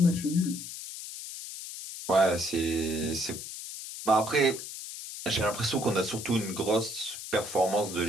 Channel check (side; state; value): left; noise; hiss, 10 dB below the sound